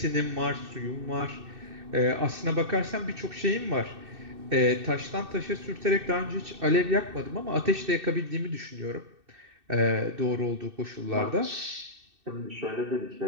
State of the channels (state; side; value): late; left; 2.6 ms